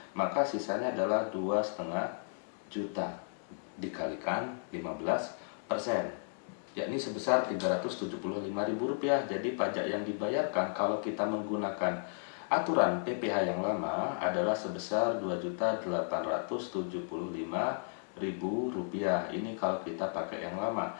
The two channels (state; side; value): silent; right; digital silence